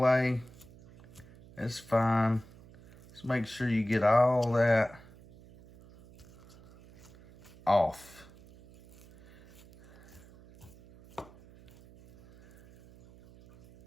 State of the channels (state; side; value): noise; right; hum, 23 dB below the sound